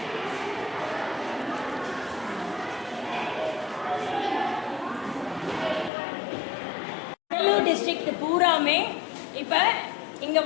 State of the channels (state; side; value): drops out; right; at 5.9 s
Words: கடலூர் டிஸ்ட்ரிக்ட் பூராமே இப்போ இங்கே